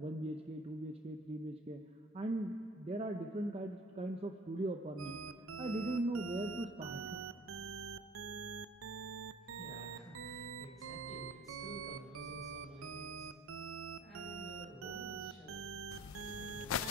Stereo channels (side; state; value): both; normal; correlation 0.51